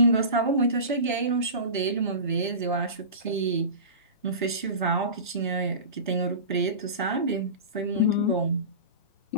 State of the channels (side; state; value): both; inverted; correlation -0.31